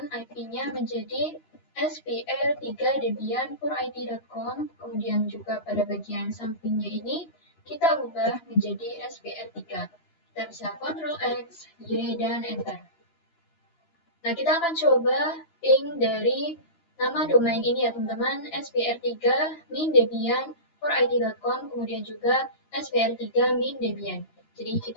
IP-nya menjadi spr3debian4id.com. Kemudian juga pada bagian sampingnya ini kita ubah menjadi spr3. Kita bisa Ctrl X, Y, dan Enter. Nah, kita akan coba ping dari nama domain ini ya teman-teman, spr3-debian4id.com, kemudian juga spr3-debian. Jadi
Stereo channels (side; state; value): right; late; 13 ms